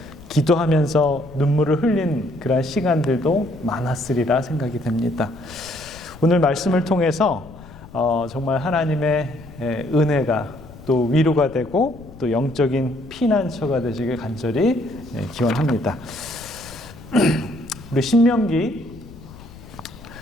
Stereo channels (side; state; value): left; noise; rumble, 18 dB below the sound